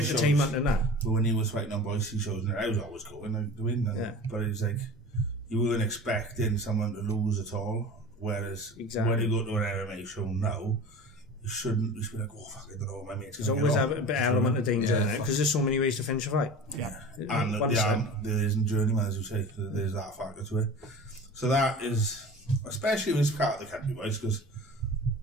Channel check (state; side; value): normal; both; correlation 0.37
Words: in that? But when he was fighting on Boise shows, I was always going to win. But it's like, you weren't expecting someone to lose at all. Whereas when you go to an MMA show now, you shouldn't be like, oh fuck, I don't know what my mate's going to There's always a bit element of danger in it, because there's so many ways to finish a fight. Yeah. And there isn't journeyman, as you say, there's that factor to it. So that is, especially with this part of the country, boys, because